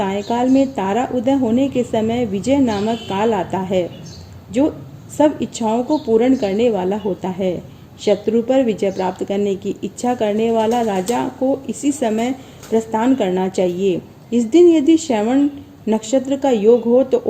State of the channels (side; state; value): both; identical; correlation 1.00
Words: में तारा उदय होने के समय विजय नामक काल आता है, जो सब इच्छाओं को पूर्ण करने वाला होता है। शत्रु पर विजय प्राप्त करने की इच्छा करने वाला राजा को इसी समय प्रस्थान करना चाहिए। इस दिन यदि श्रवण नक्षत्र का योग हो तो